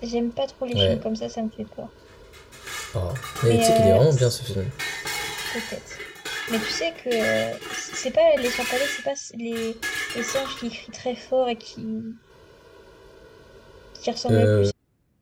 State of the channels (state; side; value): identical; both; correlation 1.00